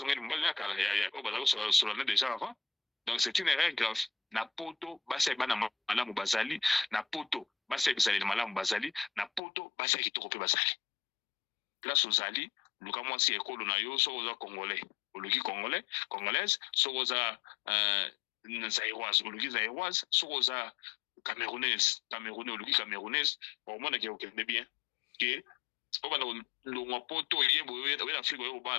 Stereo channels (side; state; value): right; drops out; at 9.4 s